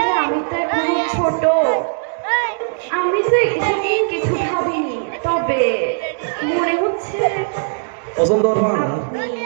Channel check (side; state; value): left; silent; digital silence